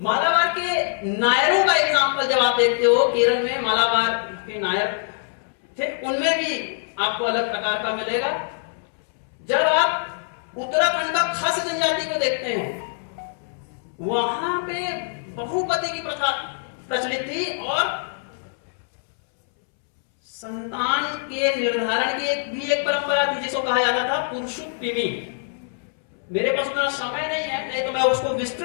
के नायरों का एग्जाम्पल जब आप देखते हो, केरल में मालाबार के नायर थे, उनमें भी आपको अलग प्रकार का मिलेगा। जब आप उत्तराखंड का खस जनजाति को देखते हैं वहां पे बहुपति की प्रथा प्रचलित थी और संतान के निर्धारण की भी एक परंपरा थी जिसको कहा जाता था पुरुषोत्तमी। मेरे पास उतना समय नहीं है, नहीं तो मैं उसको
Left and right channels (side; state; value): right; silent; 63 dB below the other